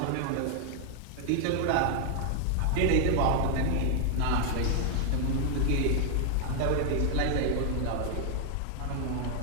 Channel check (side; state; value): both; different; correlation 0.00